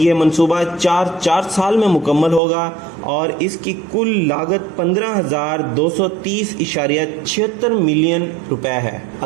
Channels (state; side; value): drops out; left; at 2.4 s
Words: منصوبہ 4 سال میں مکمل ہوگا اور اس کی کل لاگت 15,230.76 ملین روپے ہے.